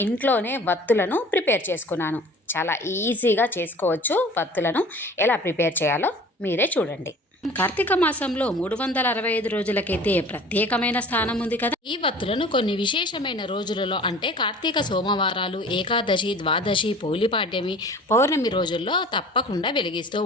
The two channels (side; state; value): both; normal; correlation 0.45